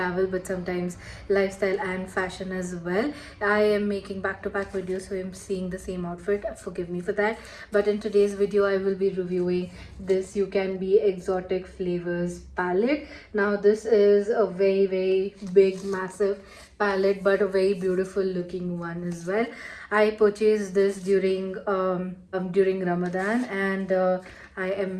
but sometimes lifestyle and fashion as well. I am making back-to-back videos, so I'm seeing the same outfit. Forgive me for that. But in today's video, I will be reviewing this Ucanbe Exotic Flavors Palette. Now this is a very big massive palette, but a very beautiful looking one as well. I purchased this during Ramadan, and I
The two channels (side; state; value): both; identical; correlation 1.00